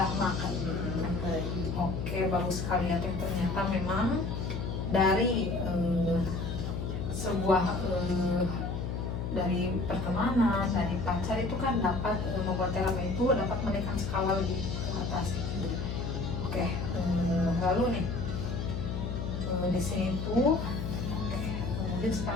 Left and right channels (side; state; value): left; noise; hum, 3 dB below the sound